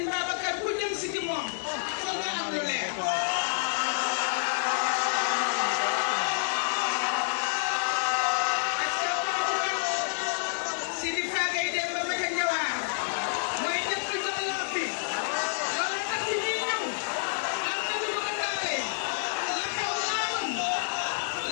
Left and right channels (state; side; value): silent; right; digital silence